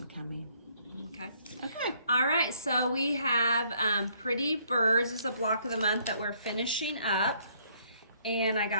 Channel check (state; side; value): inverted; both; correlation -0.65